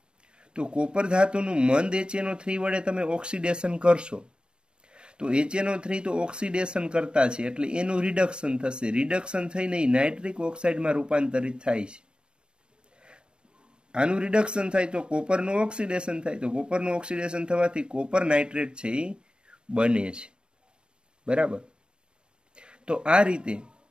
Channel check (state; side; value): late; left; 0.050 ms